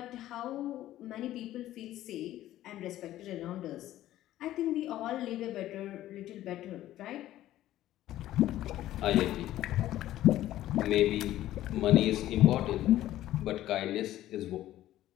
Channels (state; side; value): quieter; right; 13.9 dB